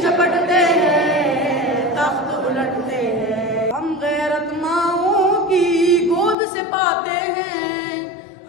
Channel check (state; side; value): drops out; right; at 6.4 s